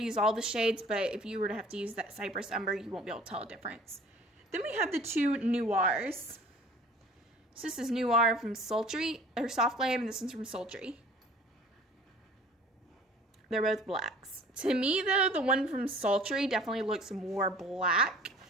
use all the shades, but if you were to have to use that Cypress Umber, you won't be able to tell a difference. Then we have the two Noirs. So this is Noir from Sultry, or Soft Glam, and this one's from Sultry. They're both blacks. To me, though, the one from Sultry definitely looks more black.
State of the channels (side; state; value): both; normal; correlation 0.48